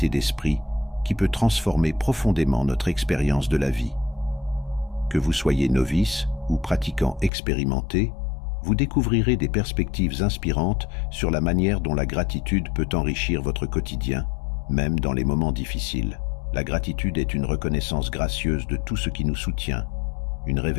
d'esprit qui peut transformer profondément notre expérience de la vie. Que vous soyez novice ou pratiquant expérimenté, vous découvrirez des perspectives inspirantes sur la manière dont la gratitude peut enrichir votre quotidien, même dans les moments difficiles. La gratitude est une reconnaissance gracieuse de tout ce qui nous soutient, une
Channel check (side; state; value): right; drops out; at 7.3 s